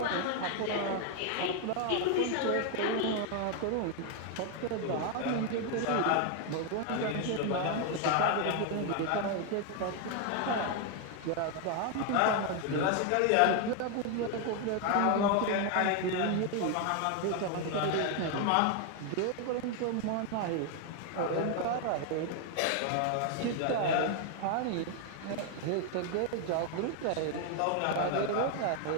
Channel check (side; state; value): both; different; correlation 0.01